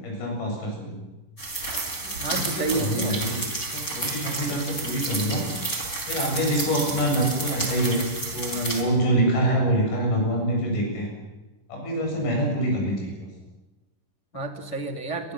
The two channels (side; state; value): right; late; 11 ms